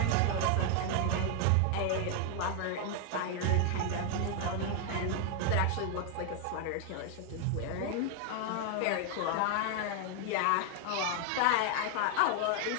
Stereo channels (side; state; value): both; different; correlation 0.00